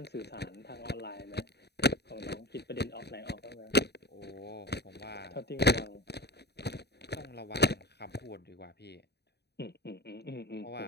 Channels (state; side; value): late; right; 0.48 ms